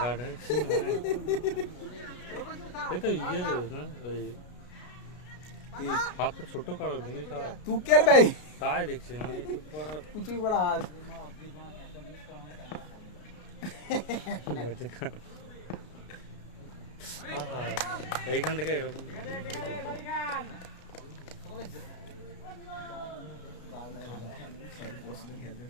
তো ইয়ে রে না ওই হাতটা ছোট করো দেখি তুকের ভাই তাই দেখছি আমি একটু পড়া কুচি বড় হাত এইখান থেকে এরকম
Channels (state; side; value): late; right; 33 ms